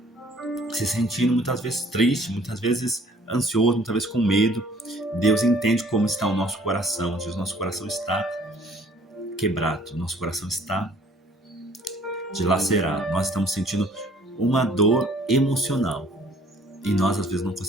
se sentindo muitas vezes triste, muitas vezes ansioso, muitas vezes com medo. Deus entende como está o nosso coração. O nosso coração está quebrado, o nosso coração está dilacerado. Nós estamos sentindo uma dor emocional e nós às vezes não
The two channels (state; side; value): normal; both; correlation 0.57